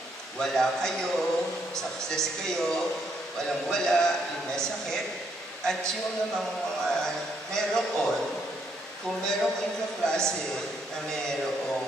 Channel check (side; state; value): both; normal; correlation 0.73